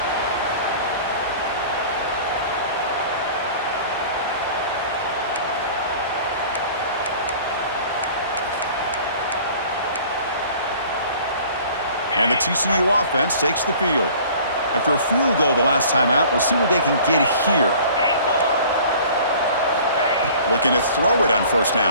And the TCU offense takes the field. After a field goal the last time out, we'll see what they can get here. Looking to throw it on 1st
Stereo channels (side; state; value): both; inverted; correlation -0.47